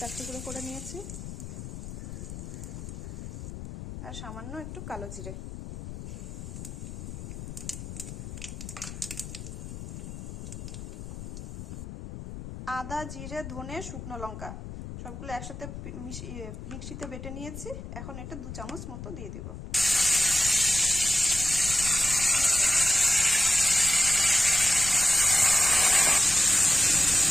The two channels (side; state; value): left; noise; rumble, 10 dB below the sound